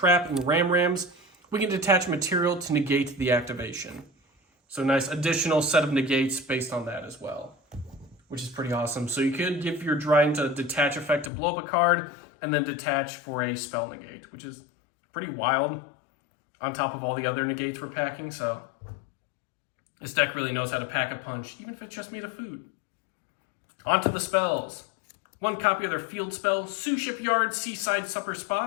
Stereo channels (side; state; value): right; drops out; at 11.3 s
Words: in Rams, we can detach material to negate the activation. So nice additional set of negates based on that as well, which is pretty awesome. So you could give your Dryden a detach effect to blow up a card, and then detach for a spell negate, which is pretty wild on top of all the other negates we're packing. So this deck really knows how to pack a punch, even if it's just made of food. On to the spells. 1 copy of their field spell, Suship Yard, Seaside Supper